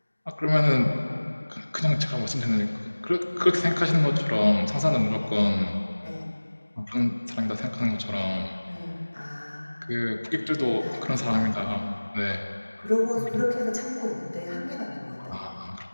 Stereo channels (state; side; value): inverted; both; correlation -1.00